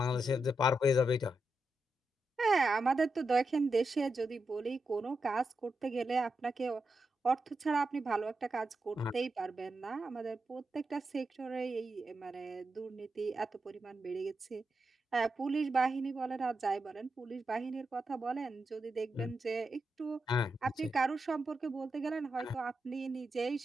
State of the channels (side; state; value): both; normal; correlation 0.86